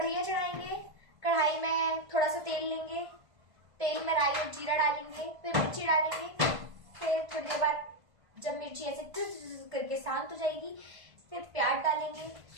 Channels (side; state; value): left; late; 1.5 ms